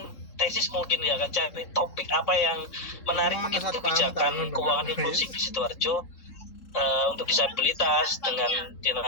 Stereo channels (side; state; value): right; late; 3.7 ms